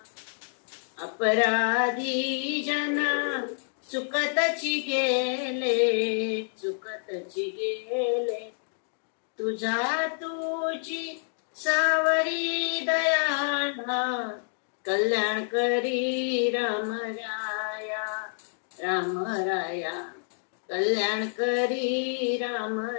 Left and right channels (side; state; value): right; silent; digital silence